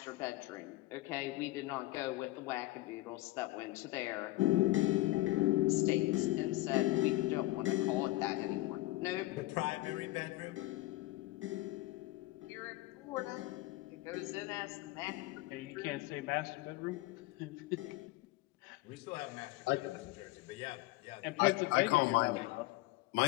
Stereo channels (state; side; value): quieter; right; 18.7 dB